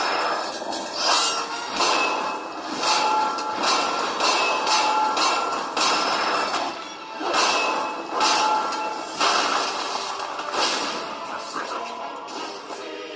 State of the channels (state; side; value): identical; both; correlation 1.00